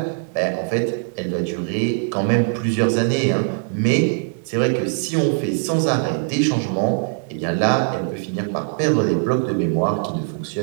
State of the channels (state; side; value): silent; left; digital silence